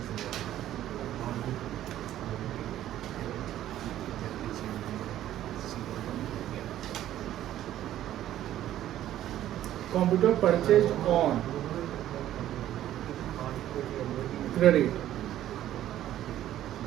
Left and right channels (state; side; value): quieter; left; 12.6 dB